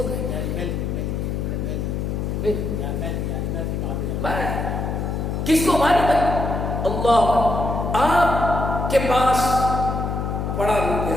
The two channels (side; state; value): left; noise; hum, 2 dB below the sound